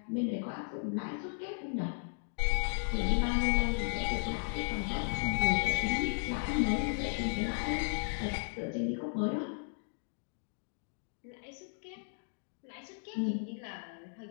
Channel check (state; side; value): silent; right; 54 dB below the other